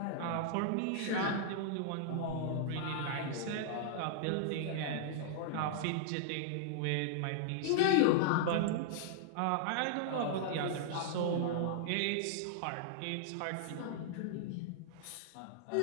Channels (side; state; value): both; different; correlation -0.01